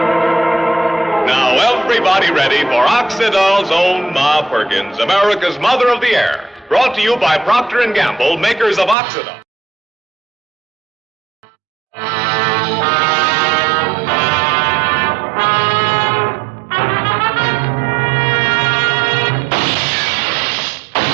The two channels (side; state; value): left; drops out; at 9.0 s